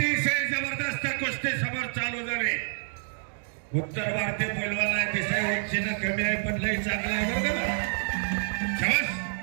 जबरदस्त कुस्ती समोर चालू झाली उत्तर भारतीय पैलवान आहे दिसाय उंचीनं कमी आहे पण लई चांगला आहे बरं का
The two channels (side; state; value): left; silent; digital silence